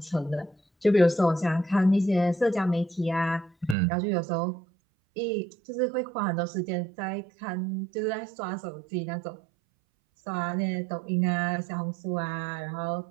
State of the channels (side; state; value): left; drops out; at 3.8 s